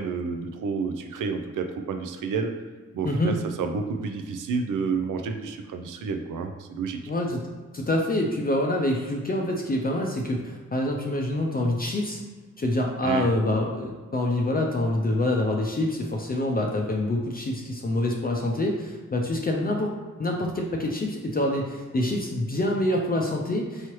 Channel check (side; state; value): both; normal; correlation 0.53